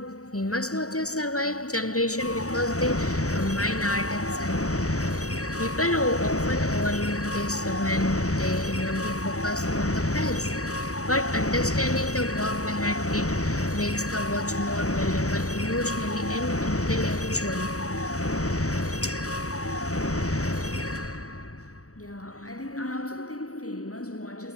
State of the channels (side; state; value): right; late; 0.65 ms